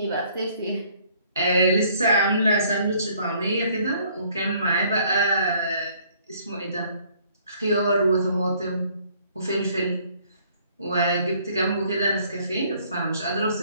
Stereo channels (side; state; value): both; inverted; correlation -0.61